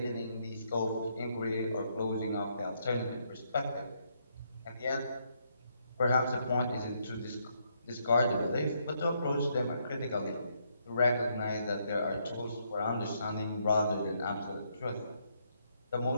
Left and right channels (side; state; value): both; inverted; correlation -0.74